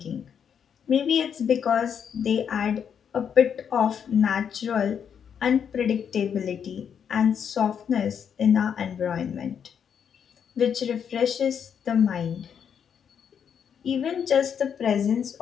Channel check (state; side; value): quieter; right; 7.8 dB